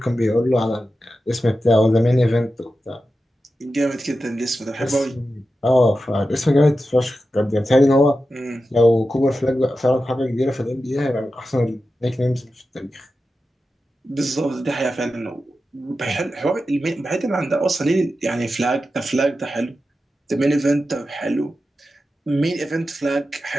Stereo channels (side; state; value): both; normal; correlation 0.91